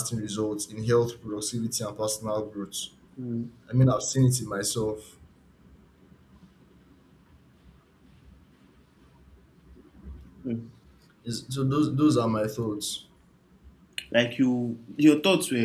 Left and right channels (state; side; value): identical; both; correlation 1.00